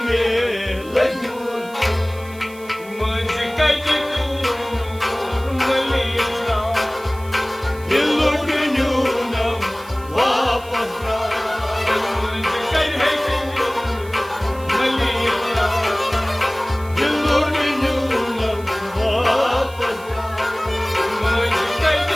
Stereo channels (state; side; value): noise; right; hiss, 22 dB below the sound